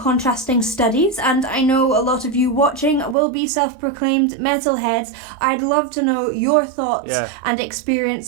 studies, and I know a lot of you watching will be self-proclaimed metalheads. I'd love to know your thoughts and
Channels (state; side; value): drops out; left; at 3.2 s